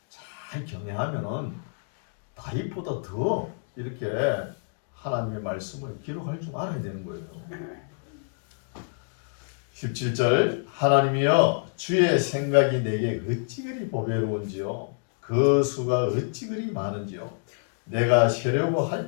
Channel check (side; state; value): right; silent; digital silence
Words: 잘 경외하면은 다윗보다 더 이렇게 하나님의 말씀을 기록할 줄 알아야 되는 거예요. 17절 하나님이여 주의 생각이 내게 어찌 그리 보배로운지요 그 수가 어찌 그리 많은지요 내가 세려고